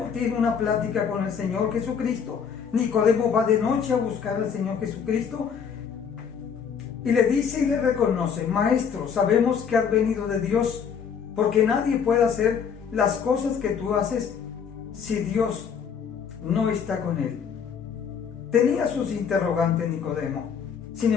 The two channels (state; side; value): quieter; right; 7.0 dB